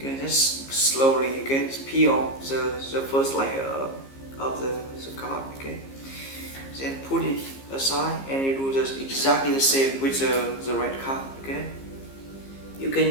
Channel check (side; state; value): right; late; 15 ms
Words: just slowly, okay, peel off the first layer of the card, okay. Then put it aside and you do just exactly the same with the red card, okay. You